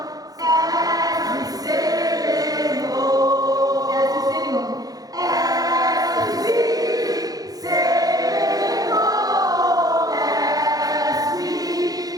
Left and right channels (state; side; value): late; left; 0.18 ms